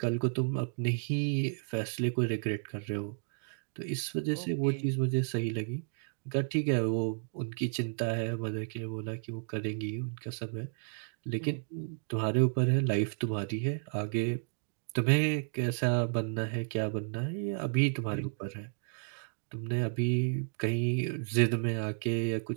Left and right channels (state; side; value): silent; left; digital silence